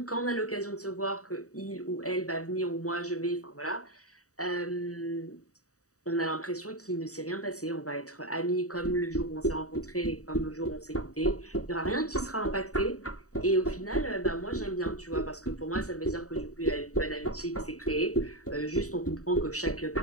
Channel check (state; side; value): late; right; 0.66 ms